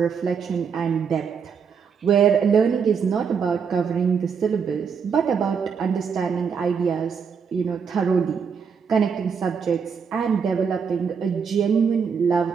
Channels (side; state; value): left; quieter; 6.3 dB